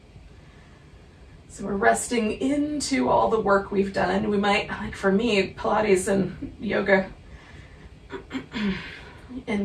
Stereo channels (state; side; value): identical; both; correlation 1.00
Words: So we're resting into all the work we've done. We might, like for me, Pilates and yoga